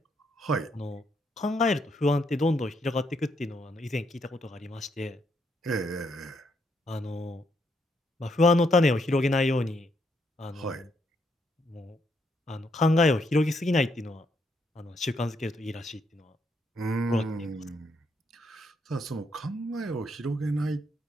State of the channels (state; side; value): normal; both; correlation 0.75